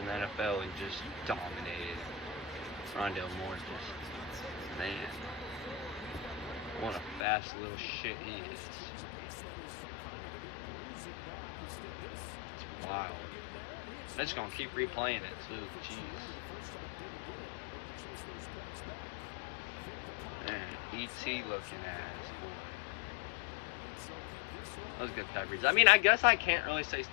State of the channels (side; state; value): right; drops out; at 7.2 s